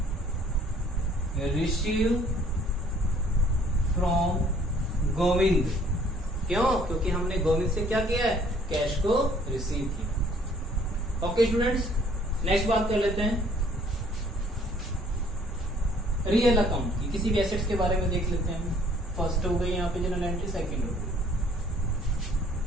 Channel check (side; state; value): both; normal; correlation 0.59